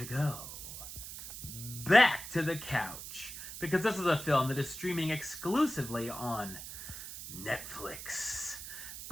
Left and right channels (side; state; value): right; noise; hiss, 10 dB below the sound